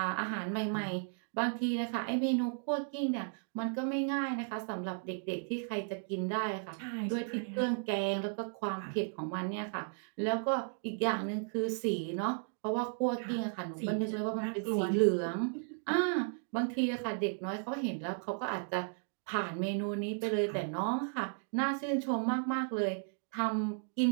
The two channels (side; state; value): left; silent; 55 dB below the other